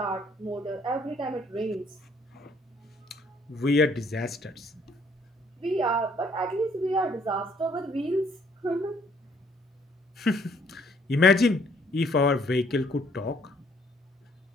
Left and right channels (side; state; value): both; normal; correlation 0.64